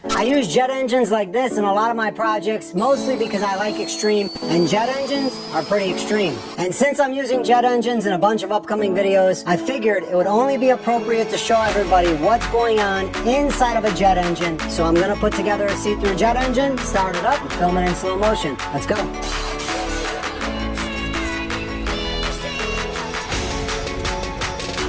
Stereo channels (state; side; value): identical; both; correlation 1.00